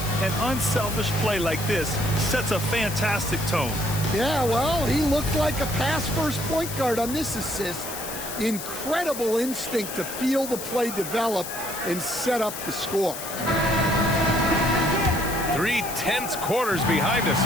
an unselfish play like this sets a fantastic tone. Yeah, well, he looked like a pass-first point guard on this assist. Incredible instinct to feel the play develop and set up the score. 3 tense quarters behind us.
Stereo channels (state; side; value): noise; left; hiss, 8 dB below the sound